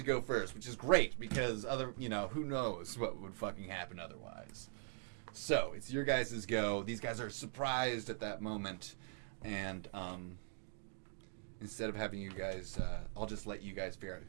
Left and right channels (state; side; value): silent; left; digital silence